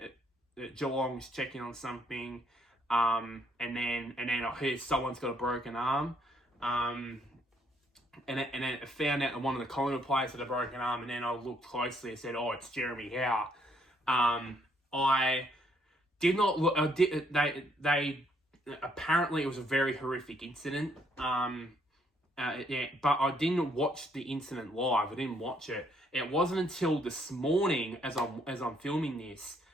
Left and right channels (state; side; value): normal; both; correlation 0.70